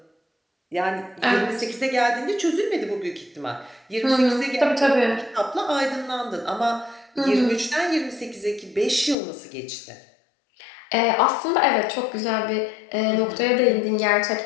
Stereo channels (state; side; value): drops out; right; at 9.2 s